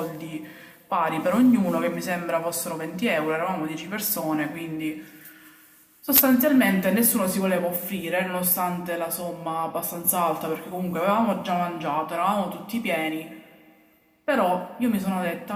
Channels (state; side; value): identical; both; correlation 1.00